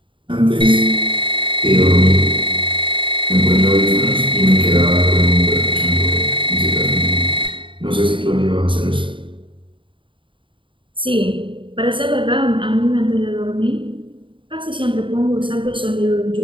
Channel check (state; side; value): late; left; 0.24 ms